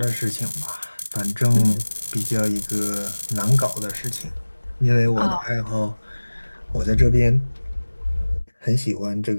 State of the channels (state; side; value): inverted; both; correlation -1.00